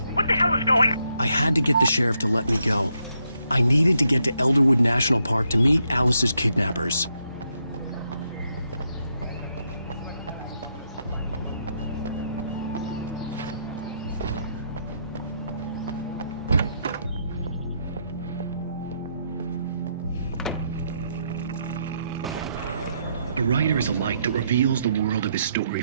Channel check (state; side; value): inverted; both; correlation -0.78